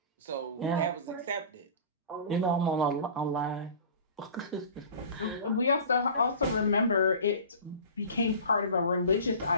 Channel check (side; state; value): both; inverted; correlation -0.39